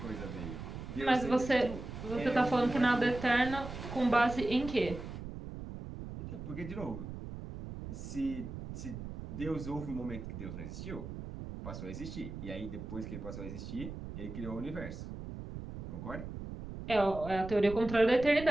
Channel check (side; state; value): right; noise; rumble, 9 dB below the sound